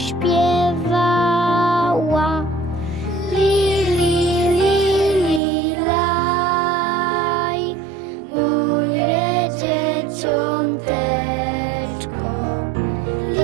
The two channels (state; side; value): drops out; left; at 5.4 s